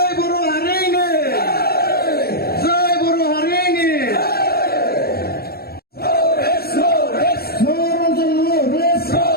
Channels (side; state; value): right; late; 0.45 ms